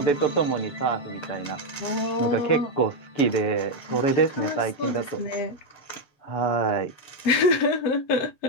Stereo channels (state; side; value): late; right; 7.8 ms